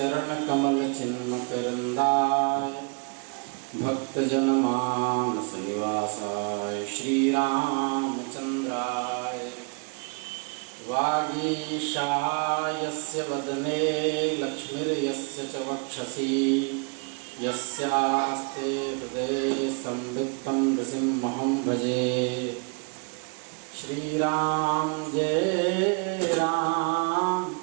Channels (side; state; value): left; quieter; 35.7 dB